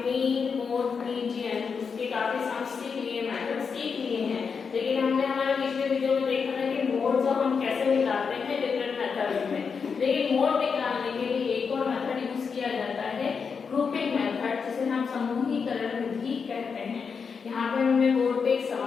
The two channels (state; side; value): quieter; right; 5.8 dB